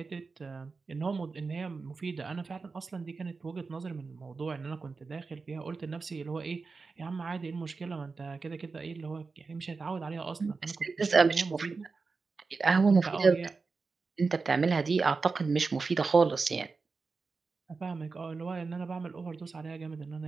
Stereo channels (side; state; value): left; quieter; 4.4 dB